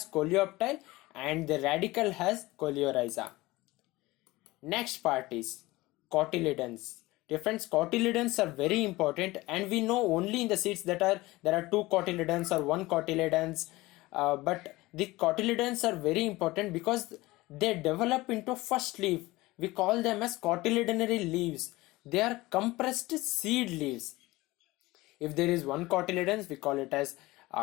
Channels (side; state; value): right; quieter; 19.9 dB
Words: coleoptile and the radicle has coleorhiza. Next part is cotyledons. Different cotyledons are very important, and we know only in the seeds that there are two cotyledons or one cotyledons, but the cotyledons are very important because they develop into first leaf. We call them as cotyledonary leaves. They are compressed seed leaves. If there is one cotyledons, we call it as